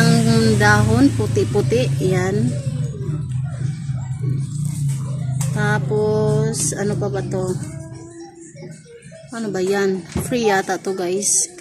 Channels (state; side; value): identical; both; correlation 1.00